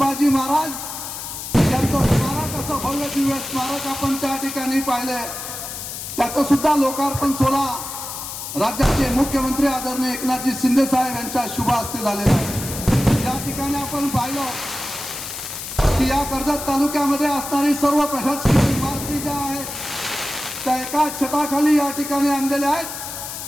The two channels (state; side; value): noise; left; hiss, 8 dB below the sound